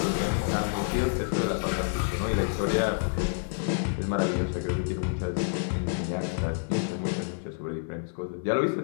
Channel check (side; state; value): right; silent; 59 dB below the other